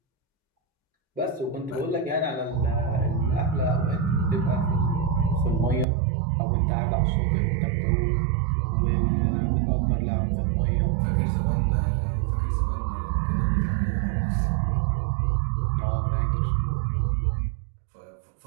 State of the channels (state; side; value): drops out; left; at 5.9 s